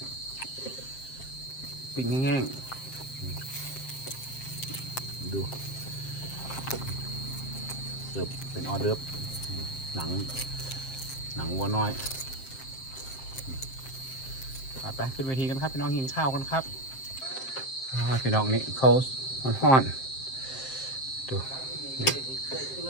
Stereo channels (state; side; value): late; right; 7.6 ms